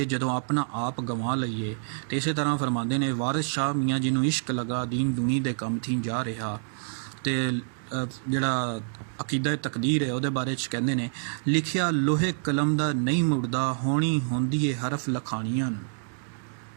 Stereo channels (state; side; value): silent; left; digital silence